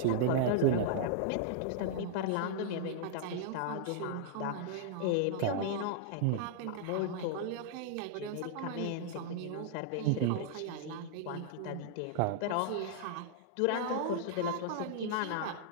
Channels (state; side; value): different; both; correlation -0.01